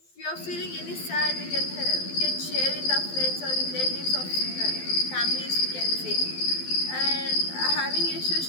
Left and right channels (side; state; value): right; late; 12 ms